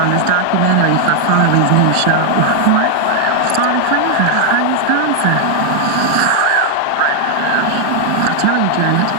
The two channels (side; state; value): both; different; correlation 0.00